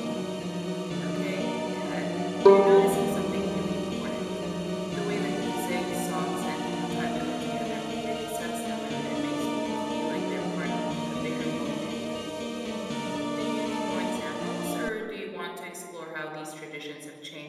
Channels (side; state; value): both; identical; correlation 1.00